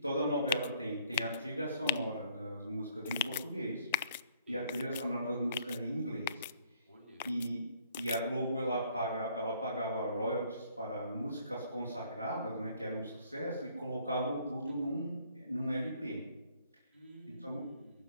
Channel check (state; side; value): inverted; both; correlation -0.62